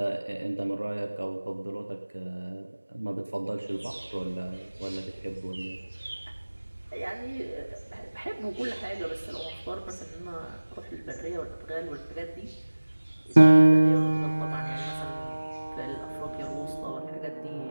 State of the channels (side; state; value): both; inverted; correlation -1.00